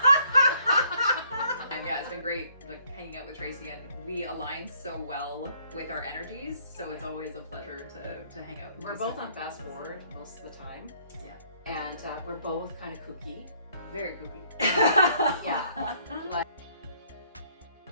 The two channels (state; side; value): inverted; both; correlation -0.65